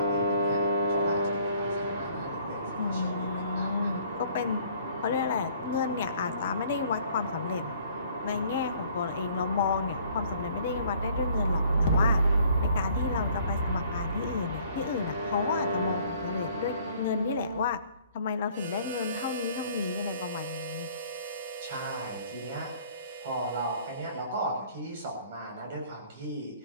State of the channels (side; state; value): both; inverted; correlation -0.58